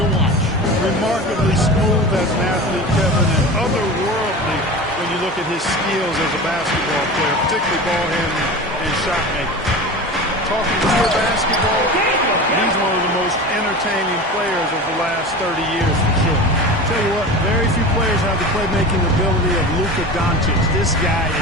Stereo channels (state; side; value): normal; both; correlation 0.32